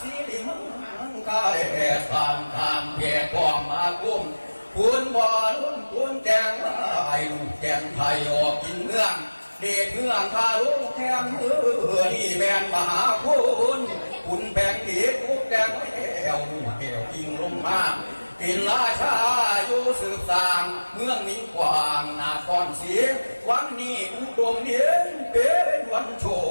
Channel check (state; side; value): inverted; both; correlation -1.00